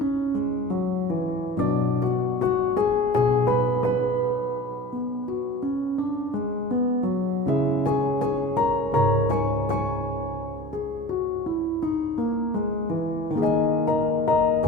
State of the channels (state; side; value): normal; both; correlation 0.38